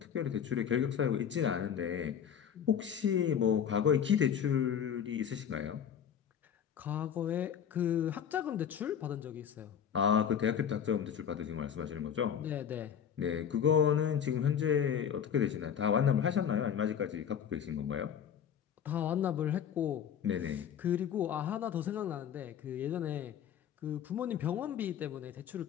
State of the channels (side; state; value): right; quieter; 8.5 dB